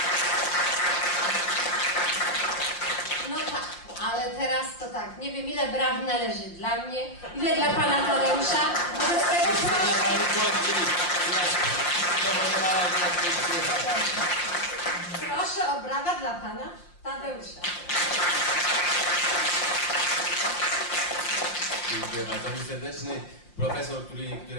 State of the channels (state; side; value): late; right; 5.7 ms